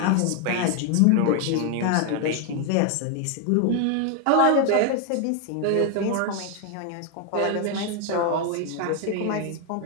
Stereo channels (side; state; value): both; different; correlation 0.01